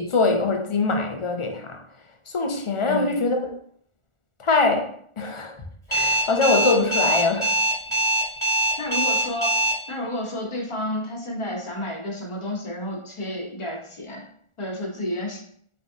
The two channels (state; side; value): late; right; 1.4 ms